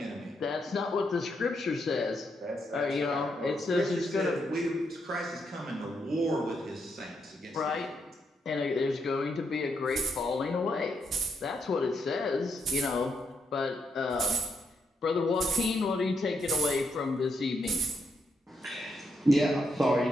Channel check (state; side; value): normal; both; correlation 0.79